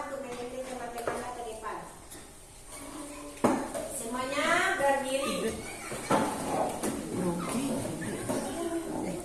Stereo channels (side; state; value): both; identical; correlation 1.00